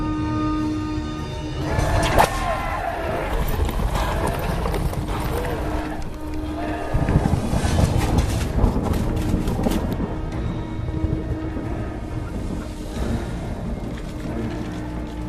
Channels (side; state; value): both; identical; correlation 1.00